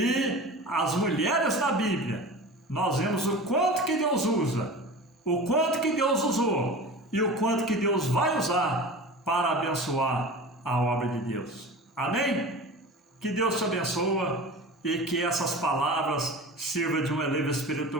as mulheres da Bíblia, nós vemos o quanto que Deus usa, o quanto que Deus usou e o quanto que Deus vai usar para abençoar a obra de Deus. Amém? Que Deus te abençoe e que essas palavras sirvam de um elevo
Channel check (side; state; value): both; normal; correlation 0.34